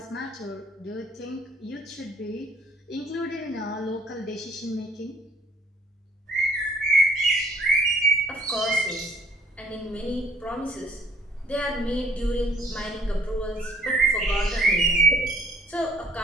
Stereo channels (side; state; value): both; normal; correlation 0.59